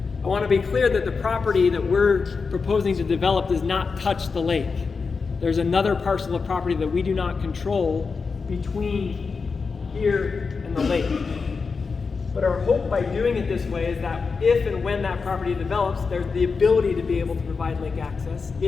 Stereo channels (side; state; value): right; quieter; 4.9 dB